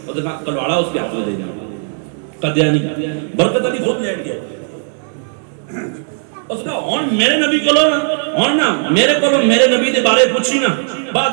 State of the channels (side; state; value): left; silent; 61 dB below the other